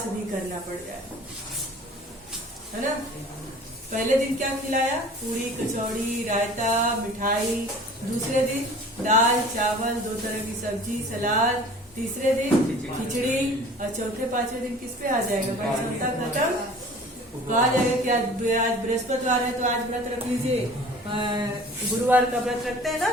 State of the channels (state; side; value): normal; both; correlation 0.45